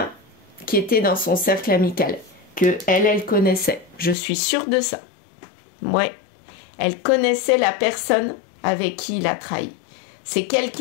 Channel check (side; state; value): right; drops out; at 4.2 s